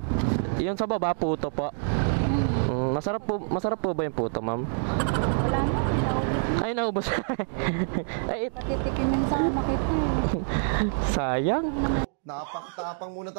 yun sa baba, puto po. Masarap po ba yung puto, ma'am? Wala na, naubos. Ay, naubos. Ay, Patitikimin sa anak ito. sayang. Napakatapang muna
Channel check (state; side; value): silent; left; digital silence